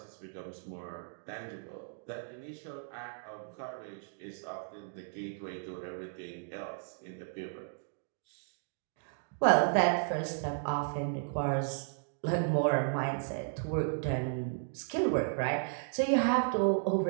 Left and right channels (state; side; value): silent; left; digital silence